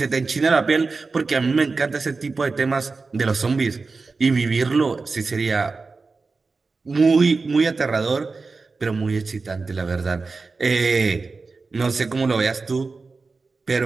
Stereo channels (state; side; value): quieter; left; 4.1 dB